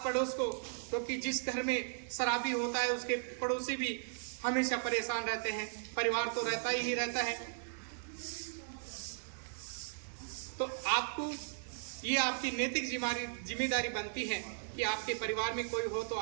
पड़ोस को, क्योंकि जिस घर में शराबी होता है उसके पड़ोसी भी हमेशा परेशान रहते हैं, परिवार तो रहता ही रहता है। तो आपको ये आपकी नैतिक जिम्मेदारी बनती है कि आपके परिवार में कोई हो तो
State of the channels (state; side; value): silent; left; digital silence